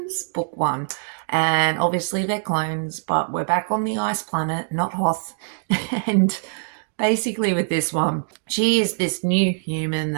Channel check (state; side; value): silent; left; digital silence